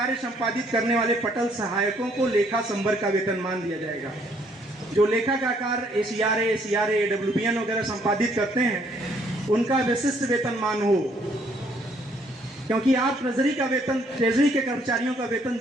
संपादित करने वाले पटल सहायकों को लेखा संवर्ग का वेतनमान दिया जाएगा। जो लेखा का कार्य ACRA, AWBN वगैरह संपादित करते हैं उनका विशिष्ट वेतनमान हो, क्योंकि आप ट्रेजरी के कर्मचारियों का वेतन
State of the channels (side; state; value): both; normal; correlation 0.66